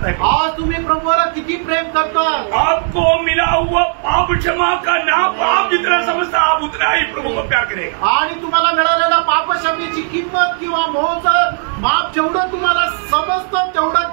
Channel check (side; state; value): left; silent; digital silence